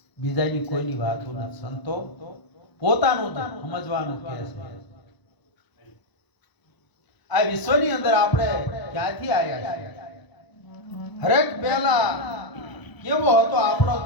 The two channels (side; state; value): right; late; 1.0 ms